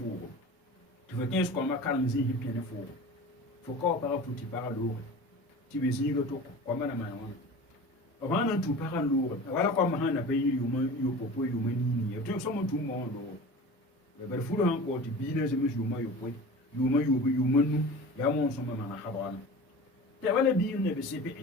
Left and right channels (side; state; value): both; normal; correlation 0.37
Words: Tu veux 15 ko ma karang zi hipi ne fugo. Fo ko para futi para lo. Ti be zi go to ko ma na ma wona. O ba na tu para lo. Wala ko ma hana be yiri yo popo yo mani ni. Tu so mo tu mo do. Be ber furo han ko ti bi na ze me yo ma yo po. Yo manu ya mo so ma na habana. Te wala bi ne be sepe.